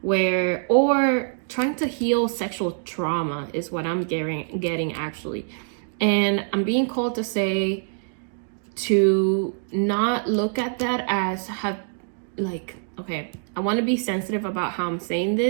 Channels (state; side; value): silent; left; digital silence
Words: or trying to heal sexual trauma is what I'm getting actually. And I'm being called to say to not look at that as okay, I want to be sensitive about how I'm saying